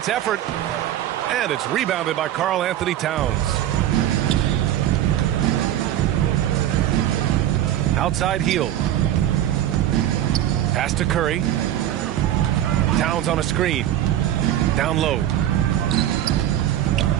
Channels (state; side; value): quieter; left; 12.1 dB